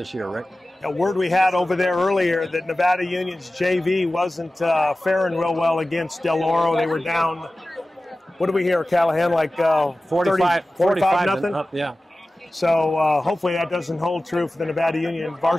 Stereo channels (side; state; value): both; normal; correlation 0.96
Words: year, Rick. A word we had over there earlier that Nevada Union's JV wasn't faring real well against Del Oro. They were down, what do we hear, Callahan, like 45 nothing? Up, yeah. So hopefully that doesn't hold true for the Nevada Union